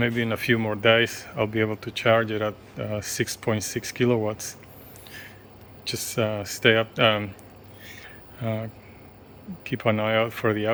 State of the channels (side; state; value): both; identical; correlation 1.00